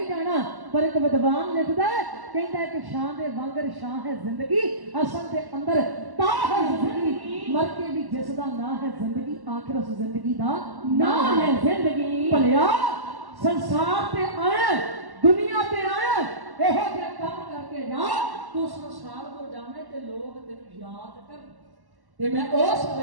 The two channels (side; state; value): left; late; 1.1 ms